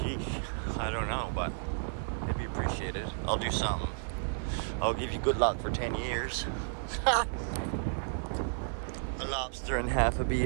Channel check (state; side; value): silent; left; 56 dB below the other